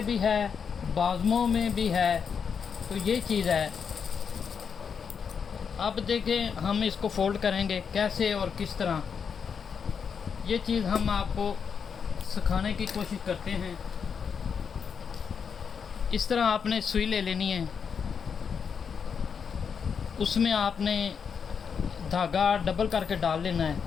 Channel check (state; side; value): quieter; right; 6.6 dB